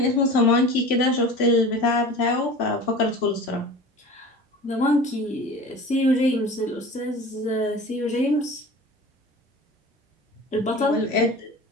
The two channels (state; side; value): normal; both; correlation 0.37